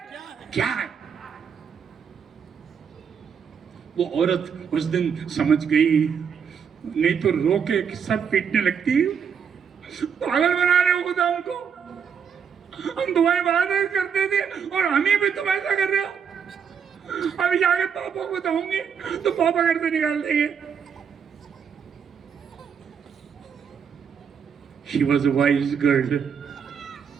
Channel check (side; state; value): left; quieter; 7.0 dB